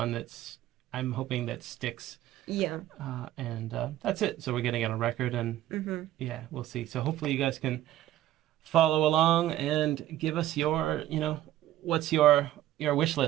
that's I'm hoping that sticks. Yeah. And that's it. So we're getting it on record, and Mm-hmm. yeah, we'll see. So hopefully you guys can follow along and give us your, what's your wish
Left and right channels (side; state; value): left; quieter; 13.6 dB